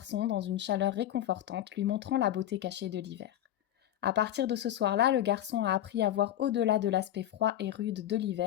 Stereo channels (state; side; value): quieter; right; 12.0 dB